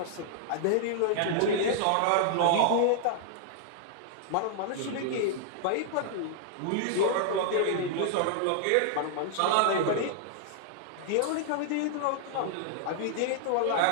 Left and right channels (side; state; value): both; different; correlation -0.01